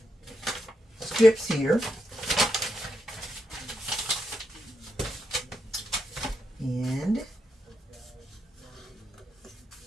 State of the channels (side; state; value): both; normal; correlation 0.83